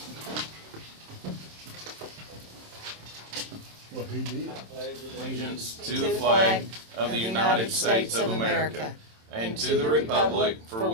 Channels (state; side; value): late; left; 27 ms